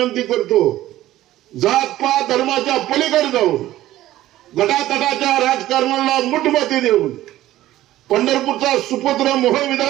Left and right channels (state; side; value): quieter; left; 14.7 dB